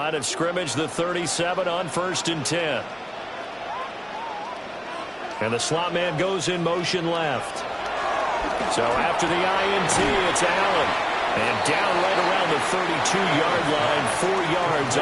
of scrimmage, the 37 on 1st and 10. And the slot man goes in motion left. So after the INT, it's Allen. And down right around the 32-yard line, 4 yards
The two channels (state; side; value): identical; both; correlation 1.00